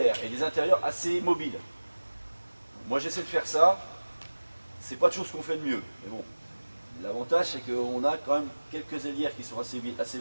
et des intérieurs assez mobiles. Moi j'essaie de faire ça, c'est pas toujours ce qu'on fait de mieux, mais bon, l'avantage c'est qu'on a quand même quelques ailières qui sont assez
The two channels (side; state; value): both; inverted; correlation -1.00